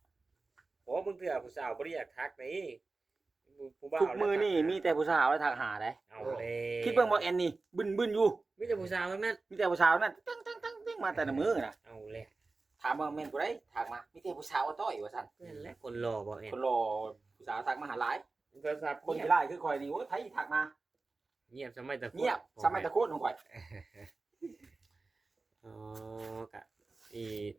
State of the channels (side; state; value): left; quieter; 3.7 dB